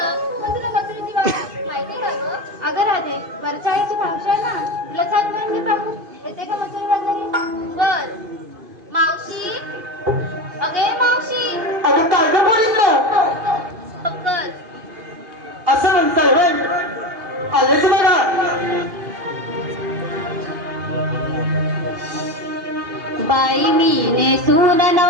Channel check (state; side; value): late; left; 2.5 ms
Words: पण तुला मथुरेची वाट माहिती का गं? अगं राधे, वरच्या आईची मावशी आहे ना, तिला छान मिळून घे पाहू. येते का मथुरा बाजारी? बर. मावशी, अगे मावशी. अगं काय गं बोलितलं? पक्कल. असं म्हणताय होय? आलेच बघा. बाई मी नेसून